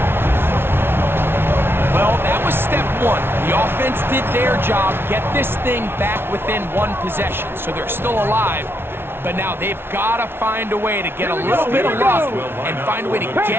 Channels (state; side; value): late; left; 0.11 ms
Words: Well, that was step one. The offense did their job, get this thing back within one possession, so they're still alive. But now they've got to find a way to get a little bit of luck and find a way to